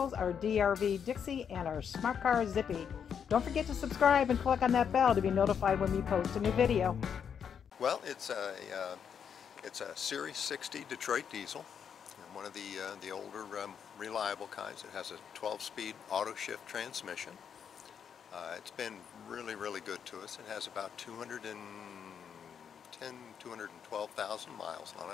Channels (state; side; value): quieter; right; 7.6 dB